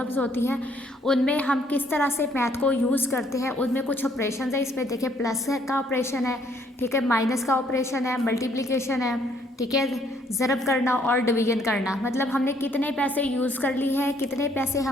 होती हैं उनमें हम किस तरह से मैथ को यूज़ करते हैं। उनमें कुछ ऑपरेशन है, इसमें देखिए प्लस का ऑपरेशन है, ठीक है, माइनस का ऑपरेशन है, मल्टीप्लिकेशन है, ठीक है, ज़रब करना और डिवीजन करना। मतलब हमने कितने पैसे यूज़ कर ली है, कितने पैसे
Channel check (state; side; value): normal; both; correlation 0.66